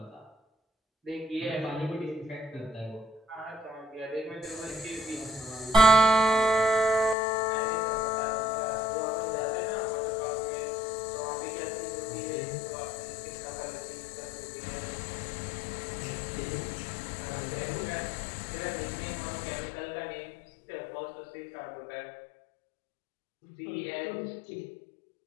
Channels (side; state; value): right; drops out; at 7.2 s